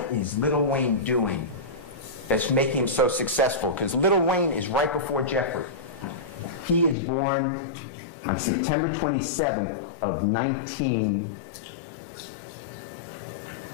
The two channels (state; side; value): drops out; right; at 7.0 s